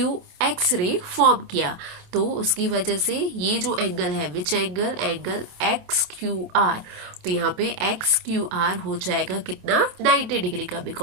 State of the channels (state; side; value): late; left; 27 ms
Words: रे फॉर्म किया। तो उसकी वजह से ये जो एंगल है, विच एंगल XQR, तो यहाँ पे XQR हो जाएगा कितना, 90 डिग्री का।